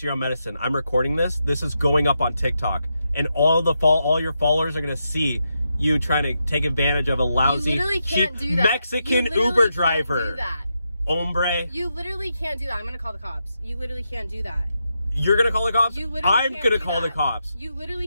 your own medicine. I'm recording this. This is going up on TikTok. And all your followers are going to see you trying to take advantage of a lousy, cheap Mexican Uber driver. You literally can't do that. Hombre. You literally can't do that. I'm going to call the cops. You literally can't do that. You're going to call the cops? You literally I'm going to call the cops. You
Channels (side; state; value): both; inverted; correlation -0.84